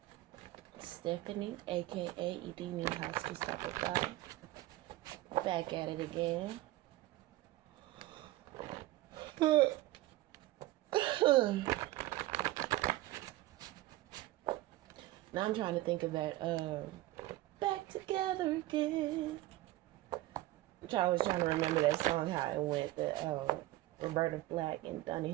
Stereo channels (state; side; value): quieter; left; 17.1 dB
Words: Stephanie, aka Edini Husky Supply. Back at it again. Now I'm trying to think of that Back Together Again. I was trying to remember that song, how it went, the Roberta Flack and Donny